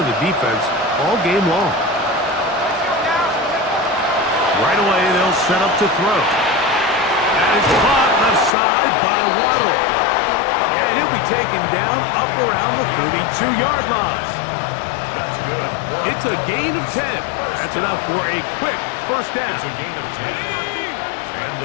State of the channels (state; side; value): drops out; right; at 8.5 s